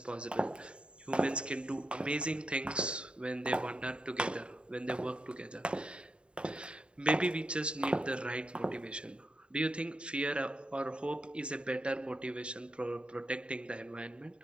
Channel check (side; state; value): left; late; 0.053 ms